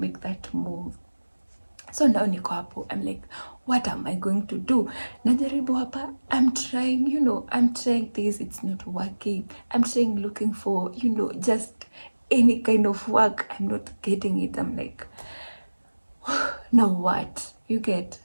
that move. So now niko hapo, I'm like, what am I going to do? Najaribu hapa, I'm trying, I'm trying this, it's not working. I'm trying looking for, just any kind of work. I'm not getting it. I'm like, now what? You get,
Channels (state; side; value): inverted; both; correlation -1.00